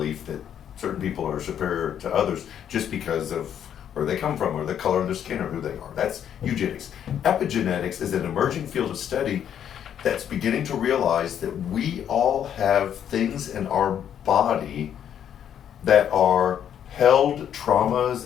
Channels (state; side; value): quieter; right; 9.4 dB